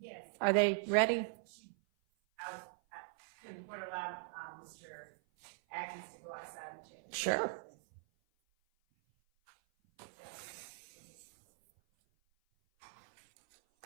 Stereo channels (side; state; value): left; silent; 51 dB below the other